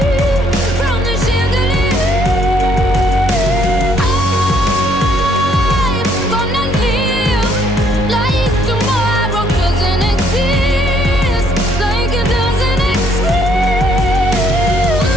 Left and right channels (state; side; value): normal; both; correlation 0.67